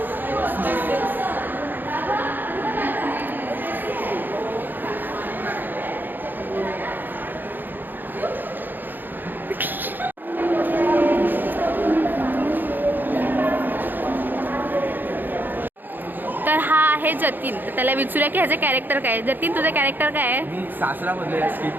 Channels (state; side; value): late; left; 0.090 ms